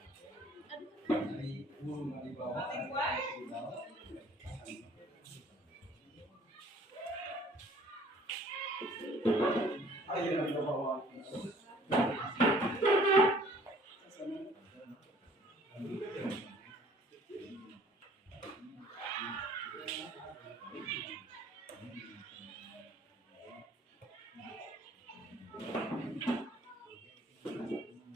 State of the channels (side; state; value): both; normal; correlation 0.54